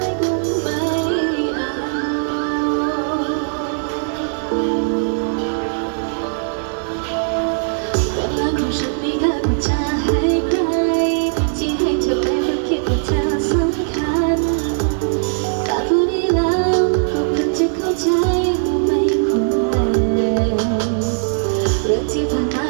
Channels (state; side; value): silent; left; 61 dB below the other